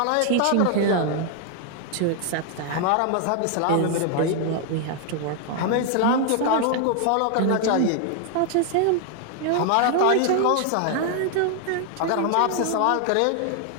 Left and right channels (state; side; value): different; both; correlation 0.00